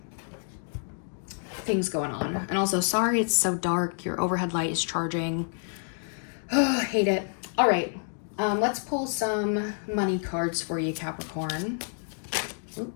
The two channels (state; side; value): silent; right; 59 dB below the other